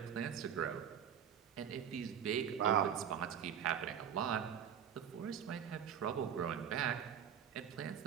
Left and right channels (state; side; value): quieter; left; 8.5 dB